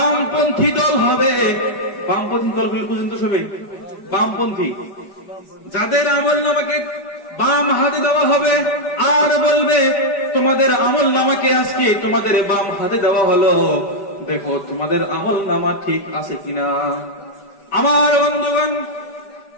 দল হবে, বামপন্থী দলগুলো পর্যন্ত সবাই বামপন্থী, যাদের আমলনামাকে বাম হাতে দেওয়া হবে আর বলবে তোমাদের আমলনামাকে আজকে তোমাদের বাম হাতে দেওয়া হলো, দেখো তোমাদের আমলনামা ঠিক আছে কিনা। আমার বন্ধুগণ,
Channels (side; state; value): right; late; 5.0 ms